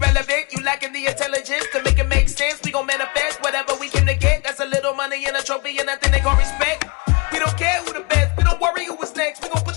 You lacking the intelligence to make it make sense. We gon' manifest whatever we came to get. That's a little money and a trophy and nothing they gon' respect. We don't care who the best, we don't worry who is next. We gon' put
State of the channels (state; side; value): quieter; right; 30.2 dB